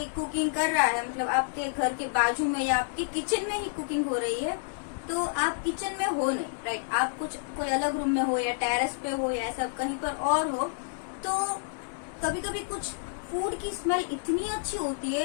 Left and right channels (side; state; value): right; silent; digital silence